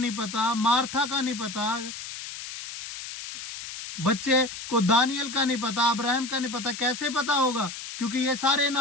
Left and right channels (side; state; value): left; noise; hiss, 10 dB below the sound